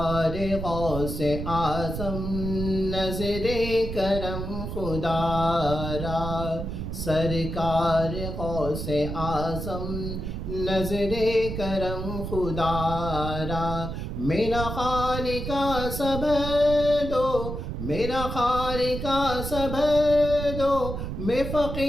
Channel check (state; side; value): noise; right; rumble, 5 dB below the sound